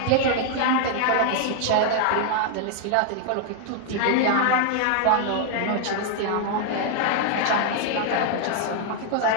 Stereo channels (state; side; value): different; both; correlation 0.00